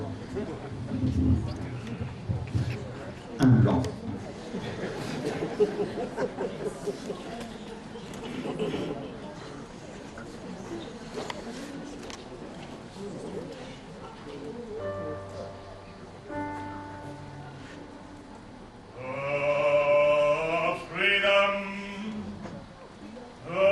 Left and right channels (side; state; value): both; identical; correlation 1.00